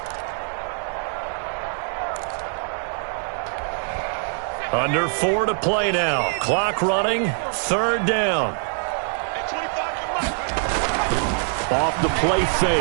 Under 4 to play now. Clock running. 3rd down. Off the play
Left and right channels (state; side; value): silent; left; 55 dB below the other